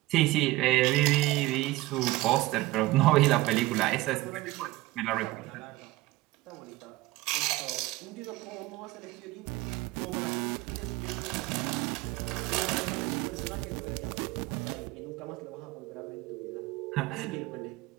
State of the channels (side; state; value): left; quieter; 18.3 dB